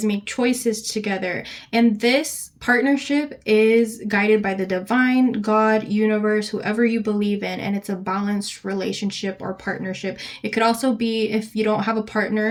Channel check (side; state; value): both; identical; correlation 1.00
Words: make choices together. And this partnership is guided by the divine, God, universe, whoever you believe in, and it's a balanced relationship or partnership. It could also be, if you don't have a